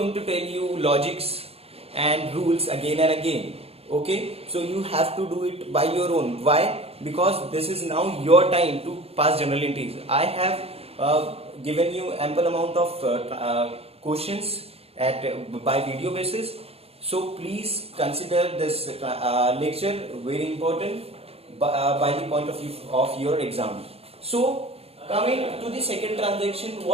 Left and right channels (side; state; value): left; late; 0.29 ms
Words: to tell you logics and rules again and again. Okay, so you have to do it by your own. Why? Because this is now your time to pass journal entries. I have given you ample amount of questions by video basis. So please consider this lecture very important by the point of view of your exam. So coming to the second transaction,